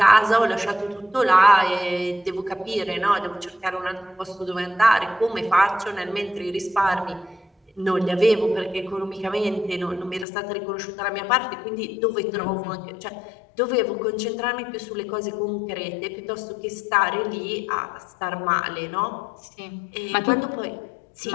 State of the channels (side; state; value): right; drops out; at 10.2 s